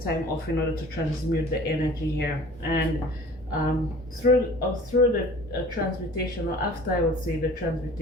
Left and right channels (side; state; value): both; normal; correlation 0.46